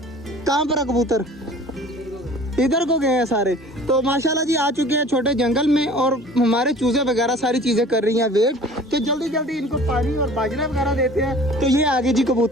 कहाँ पर है कबूतर? इधर को गए हैं सारे। तो माशाल्लाह जी आ चुके हैं छोटे जंगल में और हमारे चूजे वगैरह सारी चीज़ें कर रही हैं वेट। तो जल्दी जल्दी इनको पानी और बाजरा वगैरह देते हैं। तो ये आगे जी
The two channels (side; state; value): both; normal; correlation 0.46